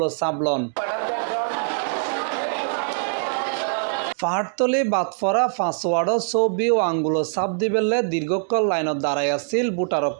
ছাপলন। পাহাড়তলি বাদফরা 5 ওয়ার্ডত ছবি ও আঙ্গুলের ছাপ দিবেলে দীর্ঘকাল লাইনত দাঁড়াই আছিল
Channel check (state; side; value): silent; left; digital silence